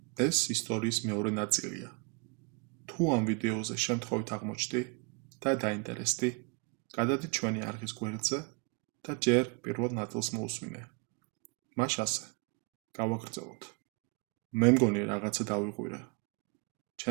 ეს ისტორიის მეორე ნაწილია. თუ ამ ვიდეოზე შემთხვევით აღმოჩნდი და დაინტერესდი, გადადი ჩვენი არხის გვერდზე და ჯერ პირველ ნაწილს მოусმინე. მას ასე გავაგრძელოთ. მე მგონი რაღაცა დავიღვირე.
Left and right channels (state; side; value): quieter; left; 31.7 dB